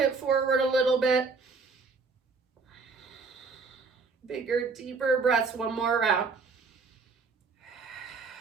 forward a little bit. Bigger, deeper breaths. One more round.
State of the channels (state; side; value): quieter; left; 4.6 dB